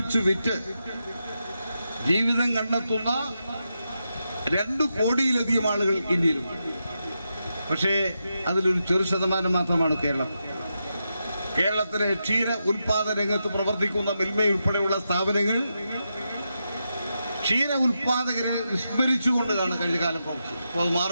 വിറ്റ് ജീവിതം കണ്ടെത്തുന്ന 2 കോടിയിലധികം ആളുകൾ ഇന്ത്യയിലുണ്ട്. പക്ഷേ അതിലൊരു ചെറു ശതമാനം മാത്രമാണ് കേരളം. കേരളത്തിലെ ക്ഷീര ഉൽപാദന രംഗത്ത് പ്രവർത്തിക്കുന്ന മിൽമയുൾപ്പെടെയുള്ള സ്ഥാപനങ്ങൾ ക്ഷീര ഉൽപാദകരെ വിസ്മരിച്ചുകൊണ്ടാണ് കഴിഞ്ഞ കാലം പ്രവർത്തിച്ചത്. അപ്പോൾ അത്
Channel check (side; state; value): both; inverted; correlation -0.87